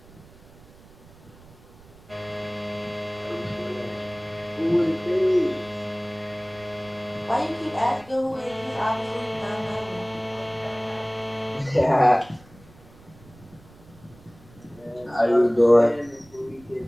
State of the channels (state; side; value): noise; right; rumble, 24 dB below the sound